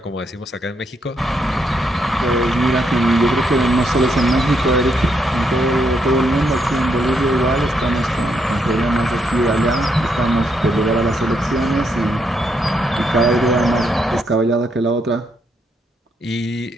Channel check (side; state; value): both; normal; correlation 0.77